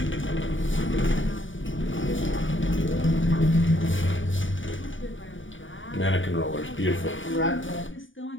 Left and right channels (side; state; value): right; late; 0.56 ms